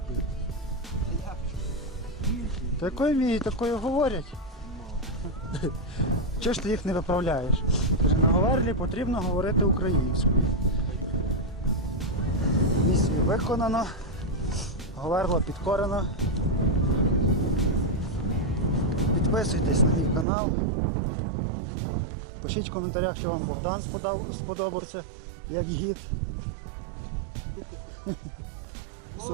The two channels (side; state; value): left; drops out; at 20.2 s